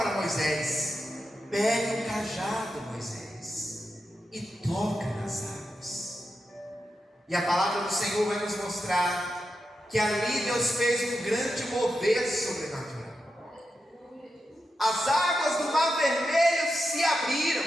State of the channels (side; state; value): both; normal; correlation 0.88